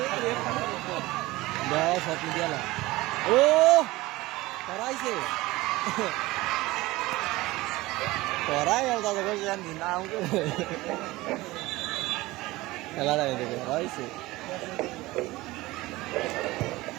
Dah, satu dia lah. Karaise. Karai yang tak ada yang di naung tu. Kalau ada itu, karaise.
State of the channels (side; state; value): left; quieter; 19.5 dB